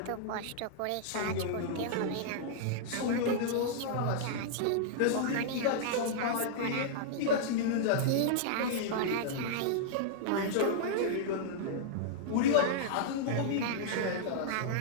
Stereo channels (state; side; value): different; both; correlation -0.02